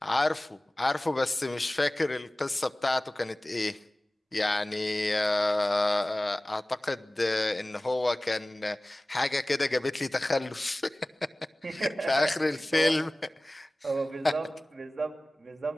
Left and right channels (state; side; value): normal; both; correlation 0.98